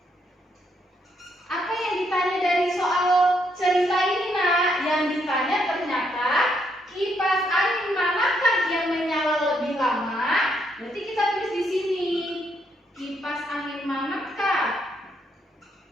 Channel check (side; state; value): both; normal; correlation 0.75